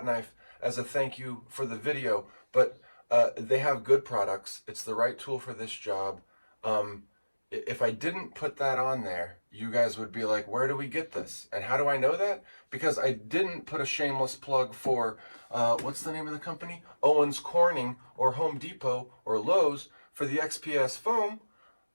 knife as a thank you for the video, but they have good products. It's the right tool for this job. If I didn't put that on there, you guys would be like, where do we get this? And how do I know that? Because I didn't put a shameless plug for, what's the name of the company? Owens Corning or Home Depot or Lowe's for the XPS foam.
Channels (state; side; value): inverted; both; correlation -1.00